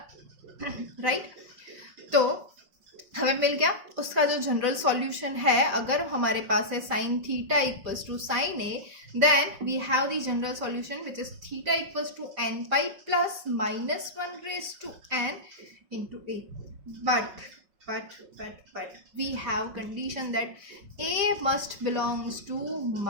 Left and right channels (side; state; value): left; late; 5.5 ms